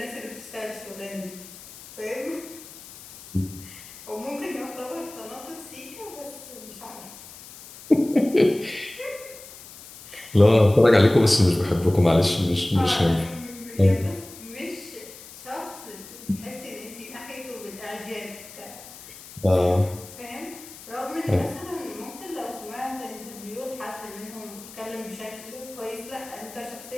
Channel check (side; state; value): left; noise; hiss, 17 dB below the sound